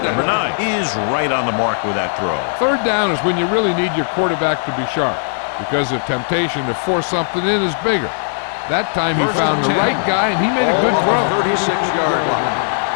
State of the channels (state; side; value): silent; right; digital silence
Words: Number 9 is right on the mark with that throw. Third down is when you really need your quarterback to be sharp because the temptation to force something in is bigger. That time he found the right guy and he made a good throw. 36-yard line.